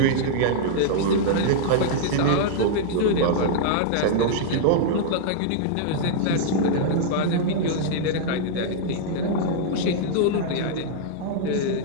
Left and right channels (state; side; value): different; both; correlation -0.02